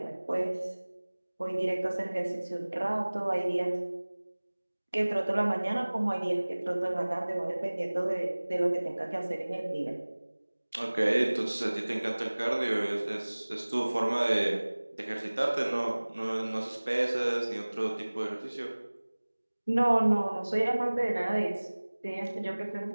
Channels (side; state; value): both; inverted; correlation -1.00